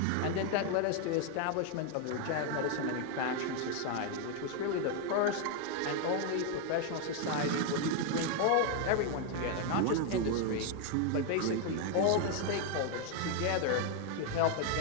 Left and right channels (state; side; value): different; both; correlation 0.01